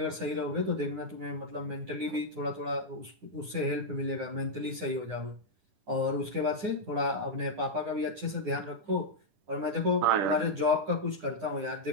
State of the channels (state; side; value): late; left; 9.7 ms